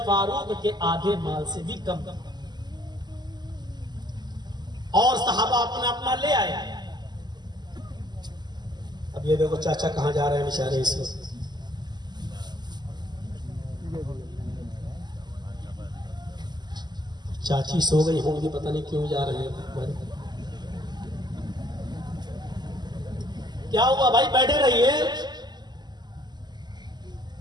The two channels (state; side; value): late; left; 0.21 ms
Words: फारूक के आधे माल से भी कम, और सहाबा अपना अपना ले आए। अब ये देखो चाचा कहां जा रहे हैं बेचारे इस वक्त। चाची सो गई होंगी, पता नहीं क्यों जा रहे हैं। क्या हुआ भाई, बैठे रहिए।